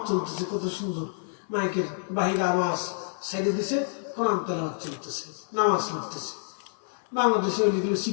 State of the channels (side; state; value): right; silent; 55 dB below the other